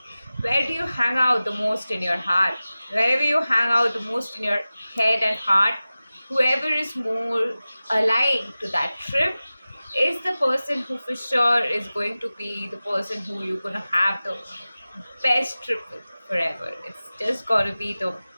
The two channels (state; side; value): inverted; both; correlation -0.96